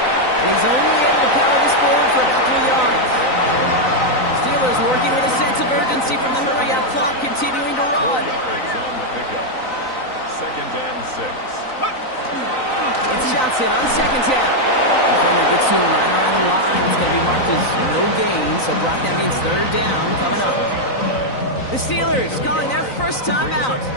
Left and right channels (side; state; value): right; late; 3.9 ms